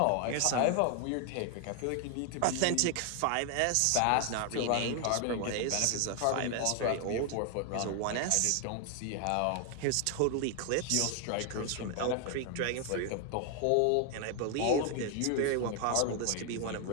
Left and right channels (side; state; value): both; different; correlation 0.00